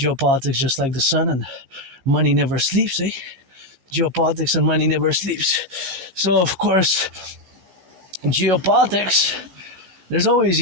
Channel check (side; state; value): left; late; 15 ms